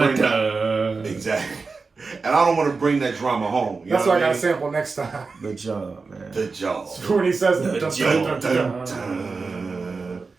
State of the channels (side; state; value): left; quieter; 4.4 dB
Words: that. Exactly. And I don't want to bring that drama home. You That's know why I what got to sample next time. The job, man. The job. When he says it. The Dun.